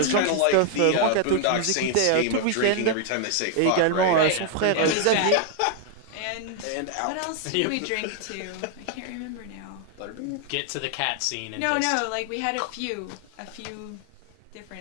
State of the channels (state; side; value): different; both; correlation 0.00